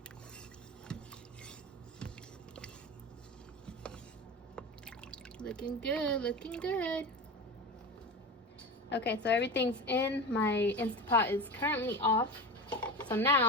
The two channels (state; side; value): normal; both; correlation 0.27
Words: Looking good, looking good. Okay, so everything's in. My Instant Pot is currently off. So